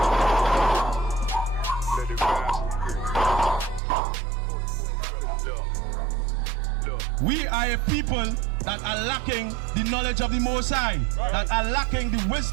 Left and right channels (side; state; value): left; drops out; at 3.8 s